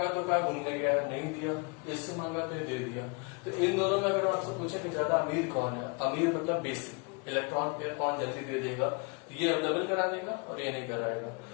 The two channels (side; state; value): right; quieter; 33.5 dB